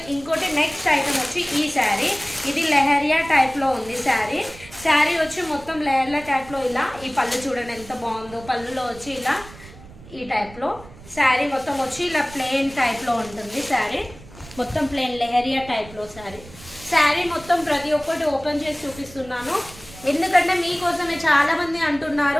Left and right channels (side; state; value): right; noise; rumble, 19 dB below the sound